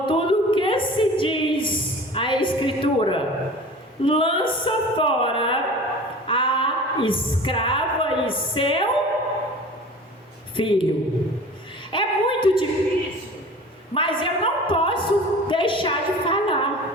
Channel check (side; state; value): both; normal; correlation 0.40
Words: o que se diz a Escritura? Lança fora a escrava e seu filho. É muito difícil, mas eu não posso deixar de